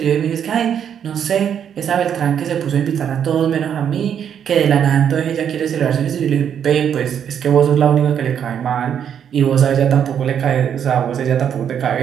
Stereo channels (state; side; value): quieter; left; 8.6 dB